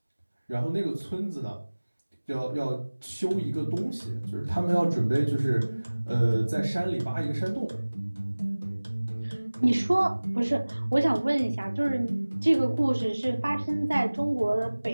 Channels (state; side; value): inverted; both; correlation -1.00